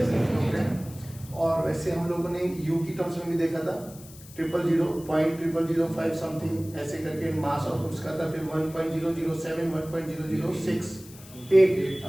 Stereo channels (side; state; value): left; noise; hiss, 19 dB below the sound